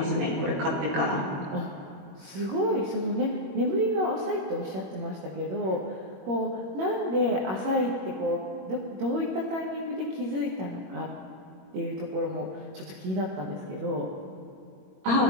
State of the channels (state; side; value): late; left; 21 ms